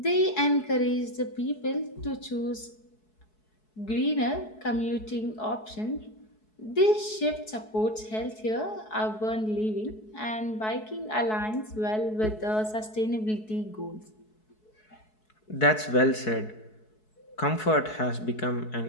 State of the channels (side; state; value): right; late; 4.7 ms